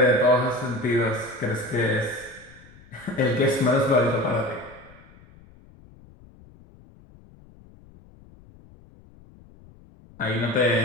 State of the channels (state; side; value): noise; left; rumble, 24 dB below the sound